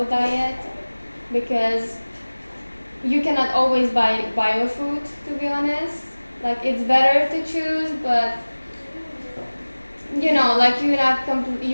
diet, because you cannot always buy bio food. To be honest, like it's better to choose, but you know, like you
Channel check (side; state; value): both; inverted; correlation -1.00